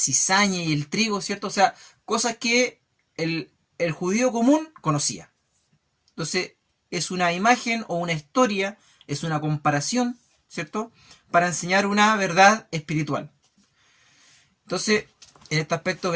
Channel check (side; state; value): both; identical; correlation 1.00